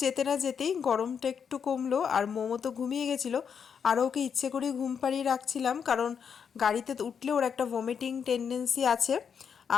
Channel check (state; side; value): quieter; right; 7.0 dB